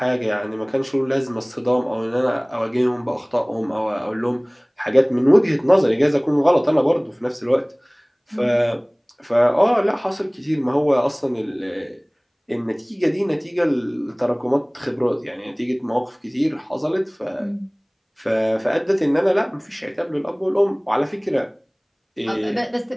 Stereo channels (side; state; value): both; identical; correlation 1.00